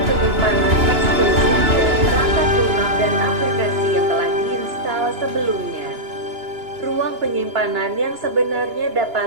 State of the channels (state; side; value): late; left; 2.9 ms